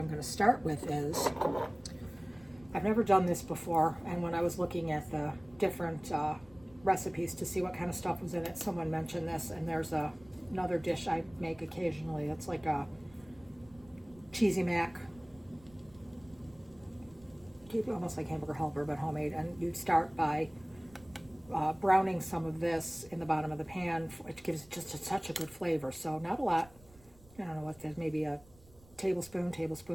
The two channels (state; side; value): noise; right; rumble, 25 dB below the sound